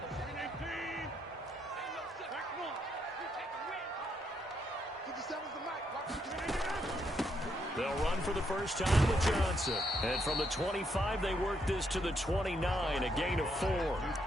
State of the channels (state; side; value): normal; both; correlation 0.76